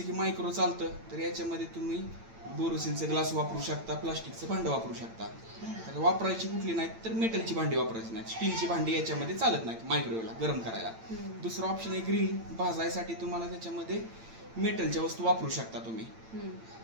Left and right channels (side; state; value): left; late; 8.9 ms